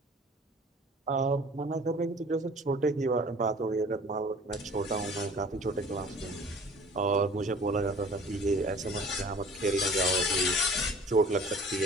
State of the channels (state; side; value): normal; both; correlation 0.47